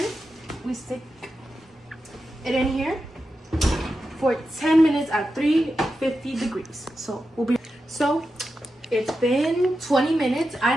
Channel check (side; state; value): both; normal; correlation 0.90